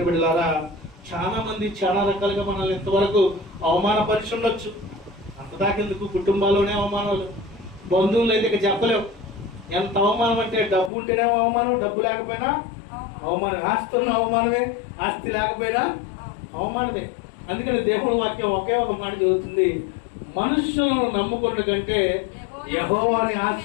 బిడ్డలారా, చాలా మంది చాలా రకాలుగా మనల్ని ఎంతవరకు అవమానపరిచి ఉండొచ్చు. అంతదాకెందుకు, కుటుంబాల్లోనే అవమానాలు, బంధువులు అయితే ఇక చెప్పలేవు. ఎంత అవమానం అంటే డబ్బు ఉంటేనే అవమానం, డబ్బు లేకపోయినా అవమానం, ఆస్తి ఉన్న అవమానమే, ఆస్తి లేకపోయినా అవమానమే. అందుకని దేవుడు వాక్యం ఒకే ఒక మాట చెబుతుంది, మనుషులను నమ్ముకున్న కంటే యెహోవాని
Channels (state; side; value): drops out; right; at 10.9 s